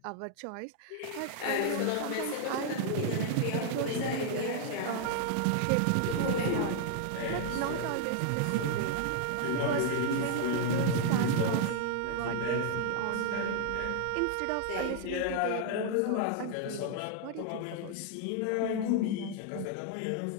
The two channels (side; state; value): both; different; correlation 0.00